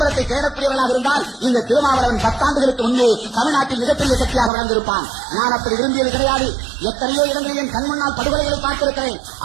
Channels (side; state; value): left; drops out; at 4.5 s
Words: தேடக்கூடியவர்களாக இருந்தால் இந்த திருமாவளவன் 10 ஆண்டுகளுக்கு முன்பே தமிழ்நாட்டில் மிகப்பெரிய சக்தியாக வளர்ந்திருப்பான். நான் அப்படி விரும்பியது கிடையாது. எத்தனையோ இடங்களில் என் கண் முன்னால் படுகொலைகளை பார்த்திருக்கிறேன்.